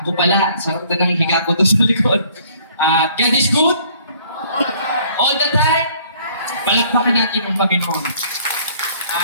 pala, sarap na ng higa ko doon sa likod. God is good? All the time? Palakpakan natin ang Panginoon.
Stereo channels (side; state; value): both; inverted; correlation -0.58